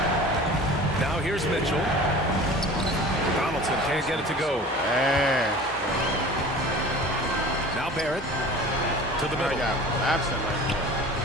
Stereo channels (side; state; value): both; normal; correlation 0.41